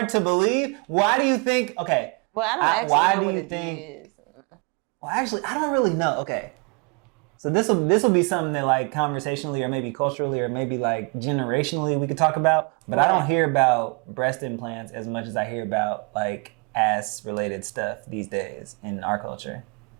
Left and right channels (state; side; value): quieter; left; 33.7 dB